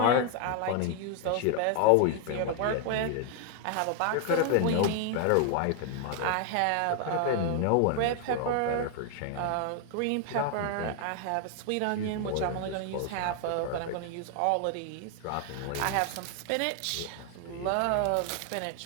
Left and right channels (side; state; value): both; different; correlation 0.00